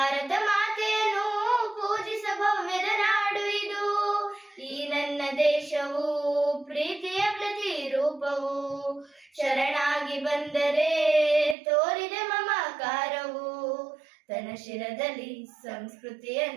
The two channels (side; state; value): left; drops out; at 11.6 s